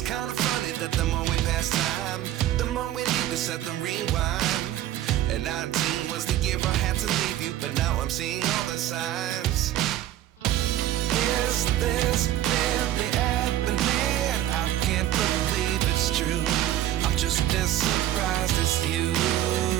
kind of funny that the more we pass time, the more we need to set them rewind. And 19 was the year I had to leave you, but now I'm seeing all the signs. Is this really happening? I can't believe it's true. I'm just as surprised as you.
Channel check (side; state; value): left; quieter; 13.1 dB